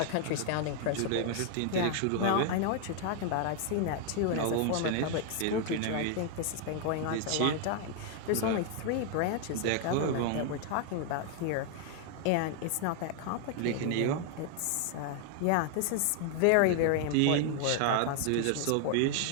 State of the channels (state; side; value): different; both; correlation 0.00